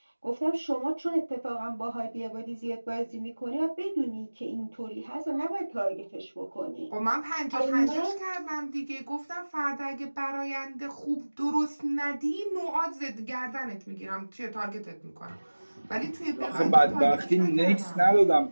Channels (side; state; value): both; inverted; correlation -1.00